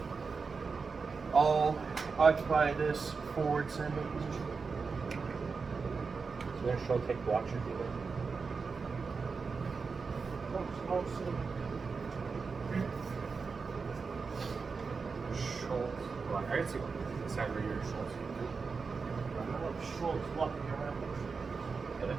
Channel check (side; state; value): left; quieter; 4.9 dB